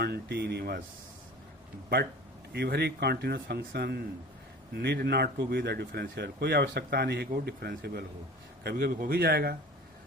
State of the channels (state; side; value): normal; both; correlation 0.41